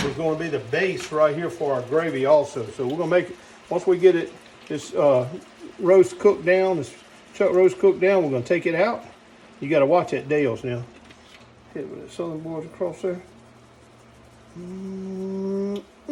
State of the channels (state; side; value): identical; both; correlation 1.00